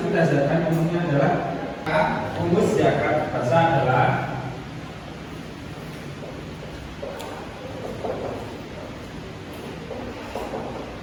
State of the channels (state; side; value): identical; both; correlation 1.00